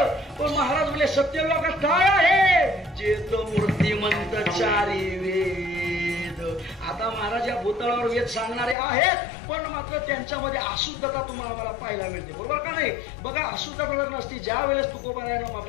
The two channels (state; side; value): drops out; right; at 8.8 s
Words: पण महाराज बोले सत्य लोकात काय आहे? चेत मूर्तिमंत चारी वेद. आता महाराज या भूतळावर वेद सांगणारे आहेत पण मात्र त्यांच्यामध्ये अशुद्धता तुम्हाला मला पाहायला मिळते, बरोबर का नाही? बघा अशुद्धता जर नसती ज्या वेळेस तुकोबरायानं